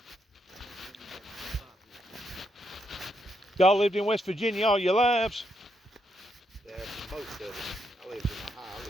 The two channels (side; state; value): both; normal; correlation 0.79